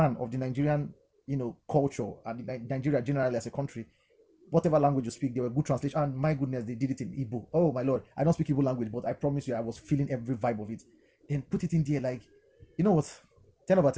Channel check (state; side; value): identical; both; correlation 1.00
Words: of the Nigerian, culture and Nigeria generally as a country, whatever language you speak, they were good translation. And my goodness, they did it in Igbo. Oh my lord, I don't speak Igbo language, but I promise you, I was feeling every vibe of it. Then put it in there, like, you know what? 10 over